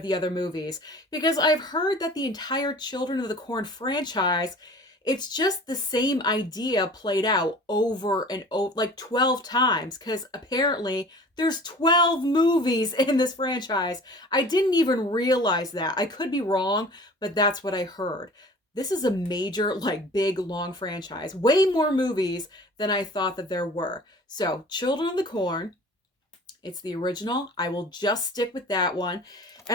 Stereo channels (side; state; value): both; normal; correlation 0.44